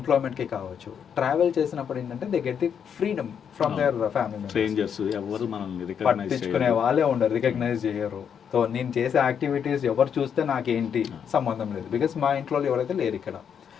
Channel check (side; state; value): right; quieter; 7.8 dB